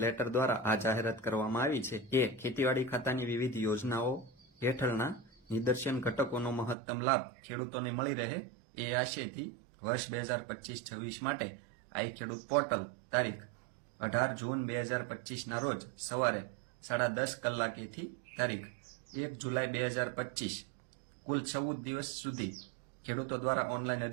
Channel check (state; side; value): drops out; left; at 6.8 s